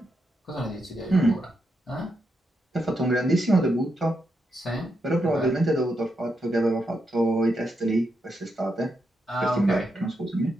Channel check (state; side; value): normal; both; correlation 0.83